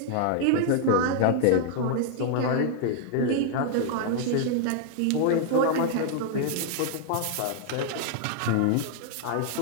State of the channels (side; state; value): both; different; correlation -0.01